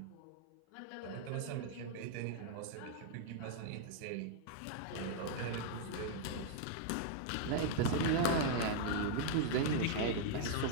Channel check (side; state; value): both; different; correlation -0.01